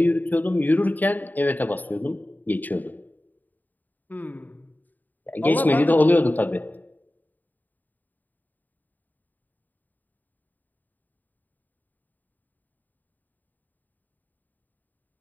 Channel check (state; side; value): late; right; 0.085 ms